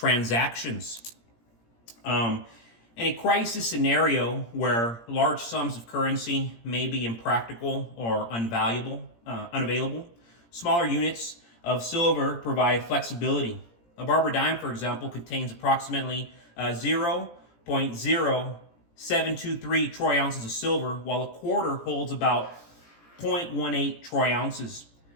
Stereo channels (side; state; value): right; late; 17 ms